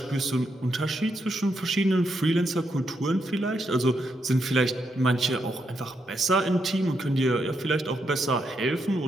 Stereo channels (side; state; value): both; normal; correlation 0.80